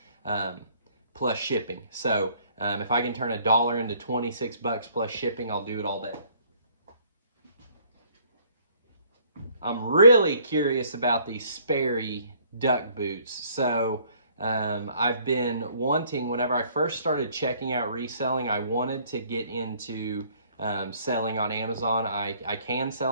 plus shipping. So if I can turn $1 into 26 bucks plus shipping, I'll do it all day. I'm really curious about these Sperry duck boots. So I've been wanting, whenever I first started checking out reselling, I wanted to get into selling on Amazon. I can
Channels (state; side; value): inverted; both; correlation -0.60